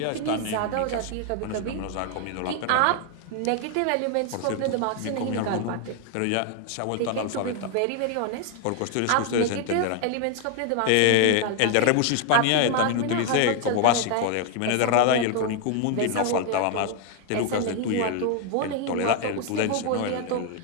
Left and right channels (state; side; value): different; both; correlation 0.00